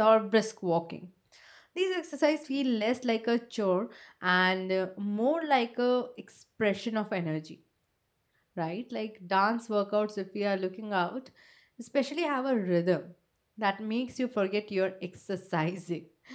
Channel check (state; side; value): identical; both; correlation 1.00